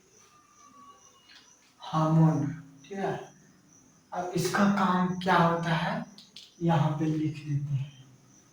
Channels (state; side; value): identical; both; correlation 1.00